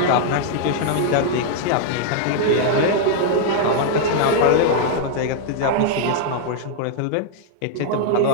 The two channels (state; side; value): different; both; correlation -0.01